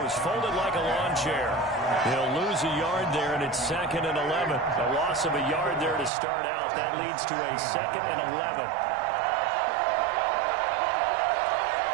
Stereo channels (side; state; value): left; drops out; at 6.1 s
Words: folded like a lawn chair. He'll lose a yard there, and it's 2nd and 11. A loss of a yard there to start out. That leads to a 2nd and 11.